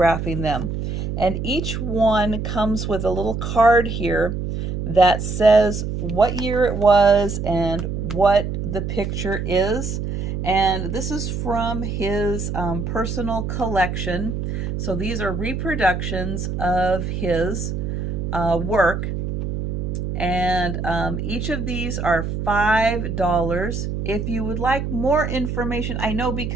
them. And each one comes with a little card here that says what year it was and what the picture is. And this is from his personal collection. So these are reproductions of his work. And each of these are $5. If you would like more information, I know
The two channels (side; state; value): right; noise; hum, 3 dB below the sound